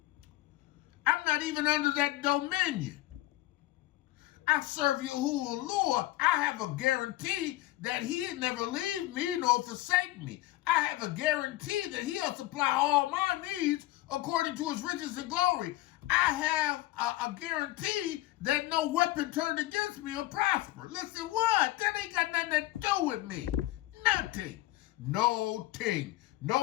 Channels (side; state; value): right; quieter; 16.9 dB